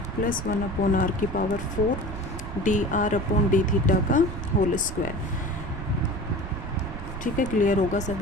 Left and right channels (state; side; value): noise; right; rumble, 8 dB below the sound